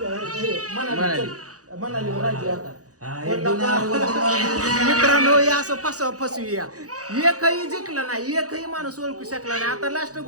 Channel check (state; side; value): late; left; 0.67 ms